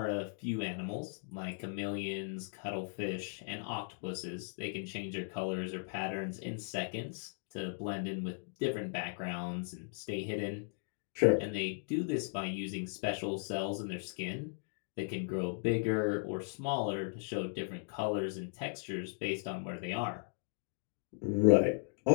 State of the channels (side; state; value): right; silent; digital silence